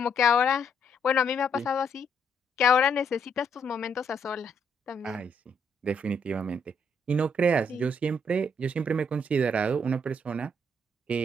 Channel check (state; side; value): normal; both; correlation 0.72